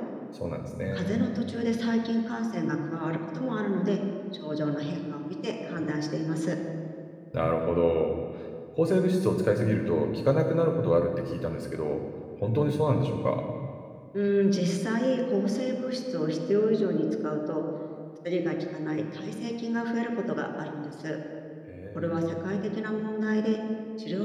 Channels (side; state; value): both; identical; correlation 1.00